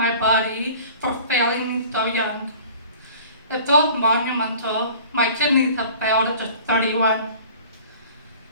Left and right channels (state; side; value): inverted; both; correlation -0.46